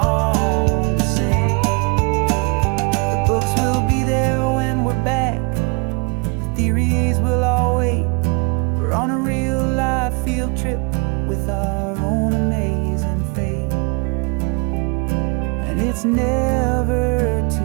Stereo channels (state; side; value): quieter; left; 32.8 dB